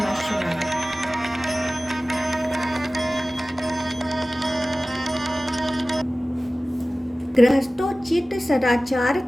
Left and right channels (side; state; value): both; normal; correlation 0.97